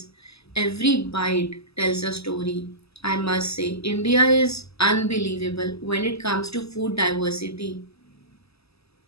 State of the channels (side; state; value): right; late; 0.78 ms